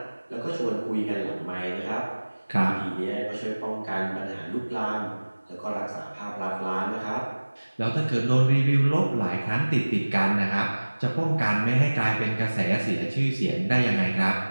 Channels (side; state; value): both; inverted; correlation -1.00